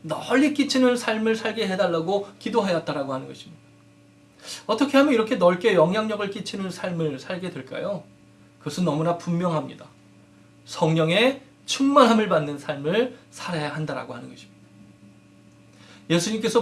널리 끼치는 삶을 살게 해달라고 기도하였다라고 하는 것입니다. 어떻게 하면 이렇게 넓게 영향력을 끼치는 삶을 살게 될까요? 그것은 너무나 분명합니다. 성령의 충만함을 받는 삶을 살아야 한다라고 하는 것입니다.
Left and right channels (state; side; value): identical; both; correlation 1.00